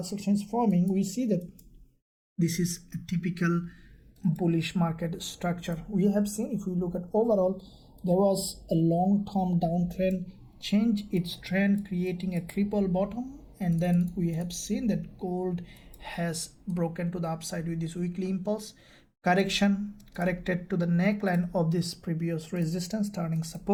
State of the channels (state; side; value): identical; both; correlation 1.00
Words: action is forming, we see that this is a typical bullish market structure. We have seen, if we look at overall, there was a long-term downtrend, change its trend, creating a triple bottom, and then we have seen that gold has broken to the upside with this weekly impulse correction, corrected to the neckline of this previous resistance, turning